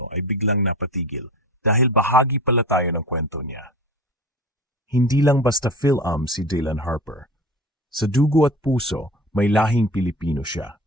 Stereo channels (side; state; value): both; normal; correlation 0.36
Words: ay biglang napatigil dahil bahagi pala tayo ng kwento niya. Hindi lang basta Phil-Am si Dylan Harper. Sa dugo at puso, may lahing Pilipino siya.